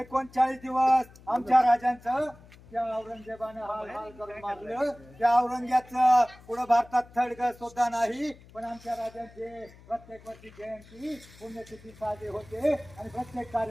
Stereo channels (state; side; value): noise; left; hum, 23 dB below the sound